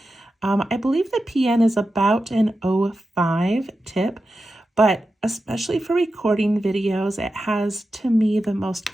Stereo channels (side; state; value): both; normal; correlation 0.91